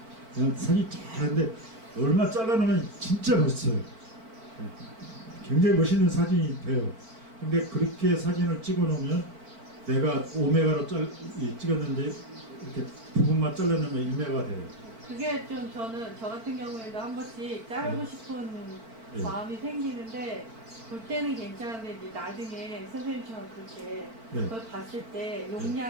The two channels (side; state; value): left; late; 4.5 ms